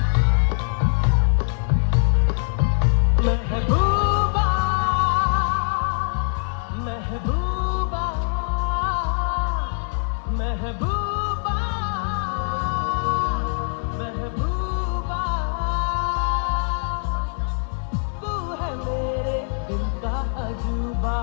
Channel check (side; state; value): right; silent; 63 dB below the other